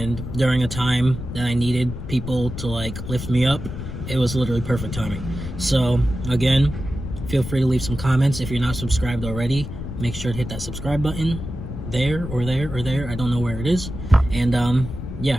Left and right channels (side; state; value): left; noise; rumble, 8 dB below the sound